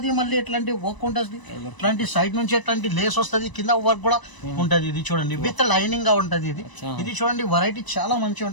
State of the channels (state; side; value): late; right; 1.0 ms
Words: మళ్ళీ ఇట్లాంటి వర్క్ ఉంటది, ఇట్లాంటి సైడ్ నుంచి ఇట్లాంటి లేస్ వస్తుంది, కింద వర్క్ కూడా ఉంటది. ఇది చూడండి, విత్ లైనింగ్ గా ఉంటది. ఇది చూడండి, వెరైటీ చాలా మంచిగా